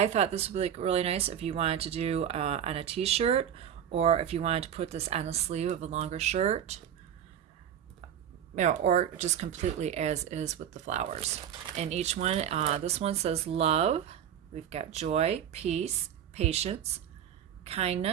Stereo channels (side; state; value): left; quieter; 9.4 dB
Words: thought this would be really nice if you wanted to do on a t-shirt, or if you wanted to put this on the sleeve of a longer shirt, you know, or just completely as is with the flowers. And each one, this one says love. We've got joy, peace, patience,